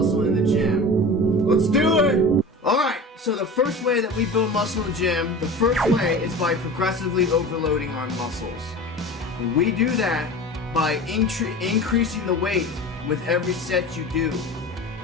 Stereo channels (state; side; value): normal; both; correlation 0.34